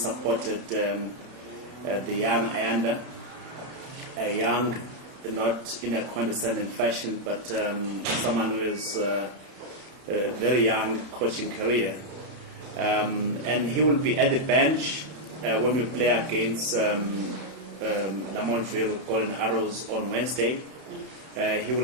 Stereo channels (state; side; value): late; left; 31 ms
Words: the young Ayanda, a young, not in a condescending fashion, but someone who is a very young coaching career. And he will be at the bench when we play against Lamontville Golden Arrows on Wednesday. He will